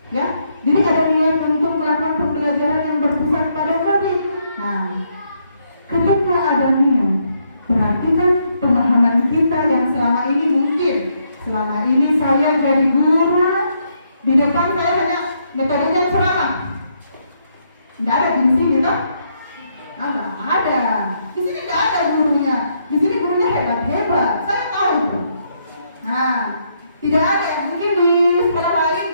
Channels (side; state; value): both; inverted; correlation -0.75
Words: ya. Jadi ada niat untuk melakukan pembelajaran yang berpusat pada murid. Nah, ketika ada niat, berarti kan pemahaman kita yang selama ini mungkin selama ini saya jadi guru, di depan saya hanya metodenya ceramah. Tidak ada di sini toh? Nggak ada. Di sini tidak ada gurunya. Di sini gurunya hebat-hebat. Saya tahu itu. Nah, tidak ada yang mungkin di sekolah lain